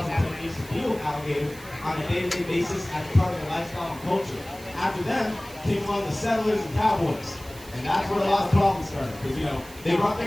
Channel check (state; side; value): noise; right; hiss, 19 dB below the sound